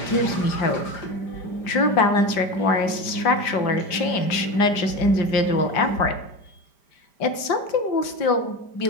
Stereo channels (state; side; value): late; right; 5.1 ms